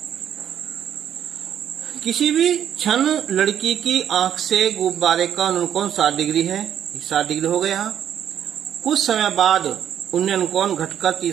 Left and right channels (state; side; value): quieter; left; 9.7 dB